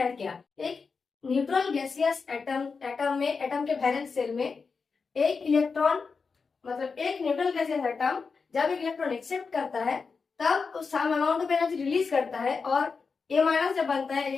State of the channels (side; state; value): right; quieter; 5.0 dB